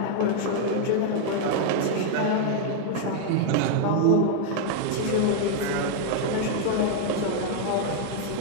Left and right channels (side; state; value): both; different; correlation 0.00